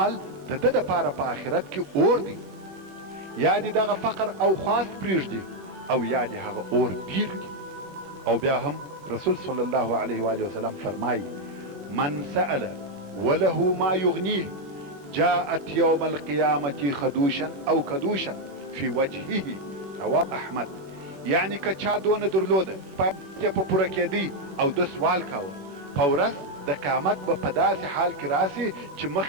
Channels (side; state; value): left; late; 21 ms